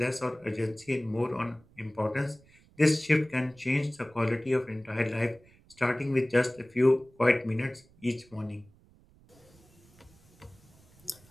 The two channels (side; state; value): right; noise; rumble, 28 dB below the sound